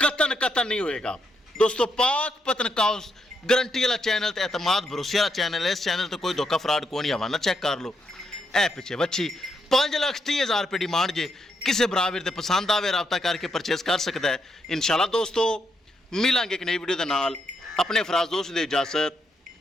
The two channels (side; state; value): both; normal; correlation 0.79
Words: कतन नहीं होएगा दोस्तों। पाक पतनकास्ट गारंटी वाला चैनल तो एतमाद भरोसे वाला चैनल है। इस चैनल तो कोई धोखा फ्रॉड को नहीं। हवाना चेक कर लो। ए पिछे वच्छी 5,30,000 रुपये डिमांड जे। किसी बराबर ते पसंद आवे राबता करके परचेज कर सकता है। इंशाल्लाह दोस्तों मिलांगे एक नई वीडियो के नाल। अपने फराज दोस्त दे इजाजत,